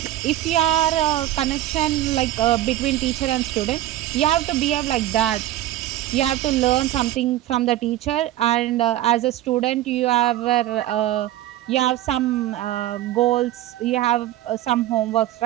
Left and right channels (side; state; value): left; quieter; 14.2 dB